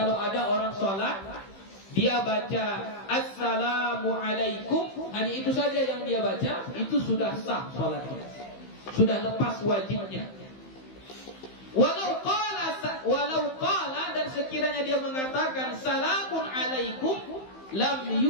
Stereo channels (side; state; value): right; late; 15 ms